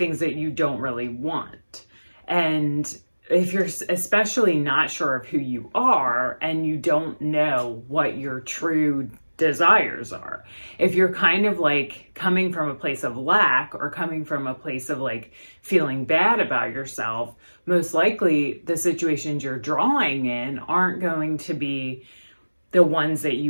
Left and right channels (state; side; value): inverted; both; correlation -1.00